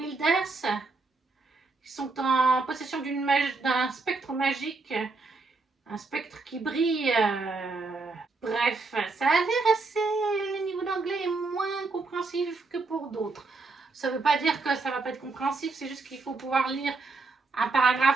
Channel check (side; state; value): left; quieter; 3.7 dB